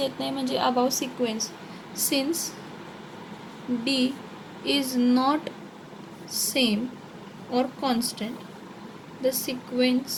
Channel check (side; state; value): both; identical; correlation 1.00